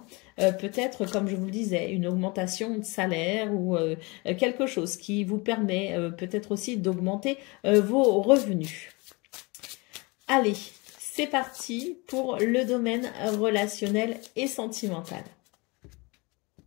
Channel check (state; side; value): quieter; right; 26.9 dB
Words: Peut-être, comme je vous le disais, une augmentation de salaire ou quelque chose qui vous permet peut-être aussi d'augmenter vos revenus. Allez, c'est parti pour le domaine relationnel et sentimental.